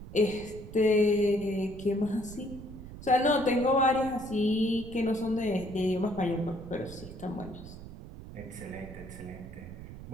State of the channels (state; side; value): noise; right; rumble, 13 dB below the sound